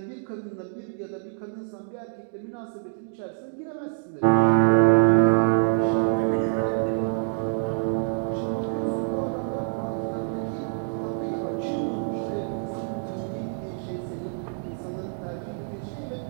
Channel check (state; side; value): silent; left; digital silence